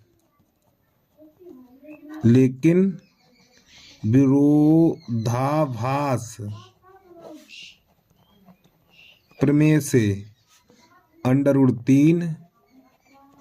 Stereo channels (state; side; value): identical; both; correlation 1.00